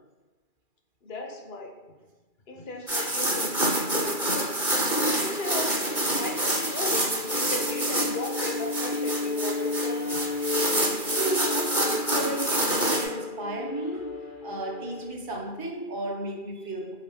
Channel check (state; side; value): late; right; 2.4 ms